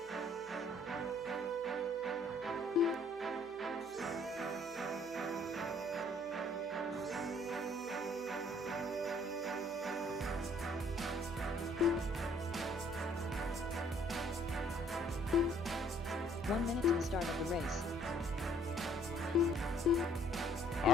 Minute to the start of the race. All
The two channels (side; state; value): both; normal; correlation 0.61